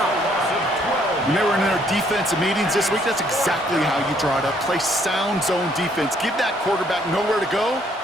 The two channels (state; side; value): normal; both; correlation 0.66